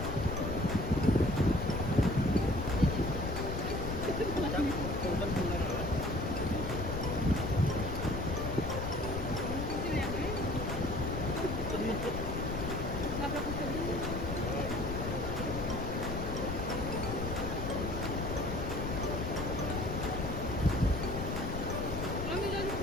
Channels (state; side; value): noise; left; rumble, 4 dB below the sound